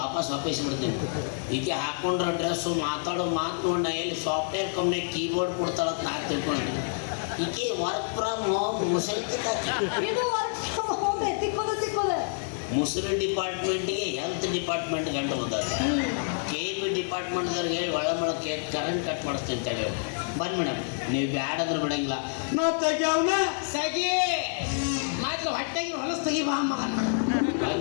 ವಾಪಸ್ ಬಿಡ್ತೀನಿ. ಈಕೆ ಹಾಕೊಂಡ್ರ ಡ್ರೆಸ್ಸು ಮಾತಾಡೋ ಮಾತು ನೋಡ ಎಲ್ಲಿ ಸಾಫ್ಟ್ವೇರ್ ಕಂಪ್ನಿ ಕೀಬೋರ್ಡ್ ಕೊಡ್ತಾಳಂತ ನಾ ತಿಳ್ಕೊಂಡೆ. ಈಕೆ ವರ್ಕ್ ಫ್ರಮ್ ಹೋಮ್ ಮುಸರಿ ಮುಸರಿ ಡಿಪಾರ್ಟ್ಮೆಂಟ್ಗೆ ಹೆಲ್ತ್ ಡಿಪಾರ್ಟ್ಮೆಂಟ್ ಗಂಟು ಬಂದದ. KB ಡಿಪಾರ್ಟ್ಮೆಂಟ್ದವ್ರಿಗೆ ಹೇಳಿ ಒಳ ಕರೆಂಟ್ ಕಟ್ ಮಾಡಿಸ್ತೀನಿ ಅಂತ ಹೇಳಿ. ಬನ್ನಿ ಮೇಡಮ್, ನೀವು ಬ್ಯಾಡಾದ್ರೂ ಬಿಡಂಗಿಲ್ಲ. ನಾ ತೆಗ್ಯಾವನ ಸಗಿ ಮಾತ್ರ ಹೊಟ್ಟೆಗೆ ಹೊಲಸು ತೆಗಿ ಬಾ ಮಗನ.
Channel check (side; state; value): right; silent; digital silence